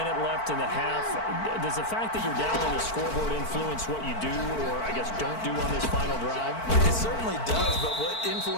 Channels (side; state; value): right; late; 4.5 ms